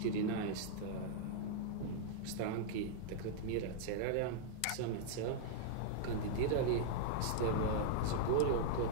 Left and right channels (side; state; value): both; different; correlation -0.02